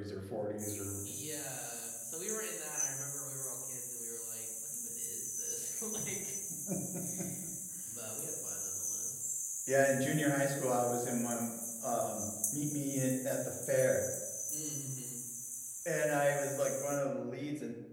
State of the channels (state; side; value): identical; both; correlation 1.00